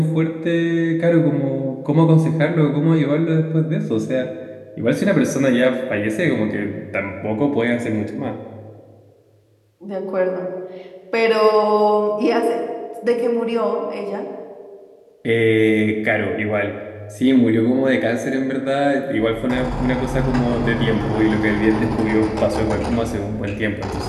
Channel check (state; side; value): identical; both; correlation 1.00